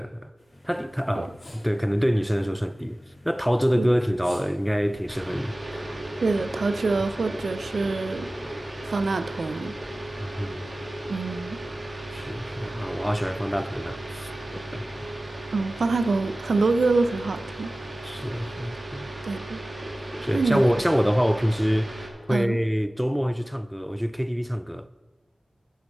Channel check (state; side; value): normal; both; correlation 0.97